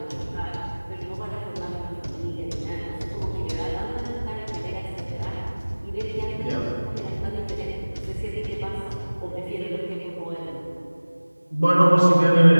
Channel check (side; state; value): both; inverted; correlation -1.00